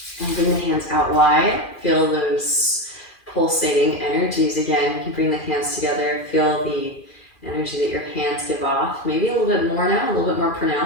And bring the hands out wide. Feel those pulsating energies again. You can bring the hands together. Feel the energy that your hands give off. Maybe a little bit more now, a little bit more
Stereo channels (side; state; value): right; late; 2.4 ms